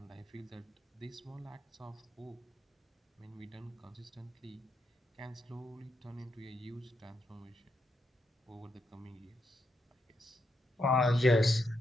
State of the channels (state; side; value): normal; both; correlation 0.81